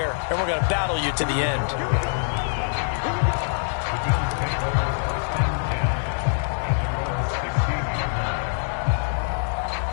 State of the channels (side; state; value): right; silent; 61 dB below the other